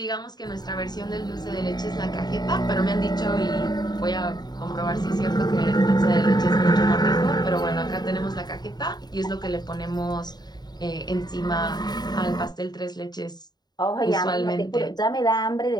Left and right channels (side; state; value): right; late; 0.20 ms